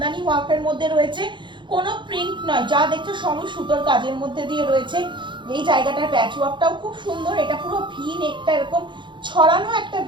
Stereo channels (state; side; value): late; left; 0.23 ms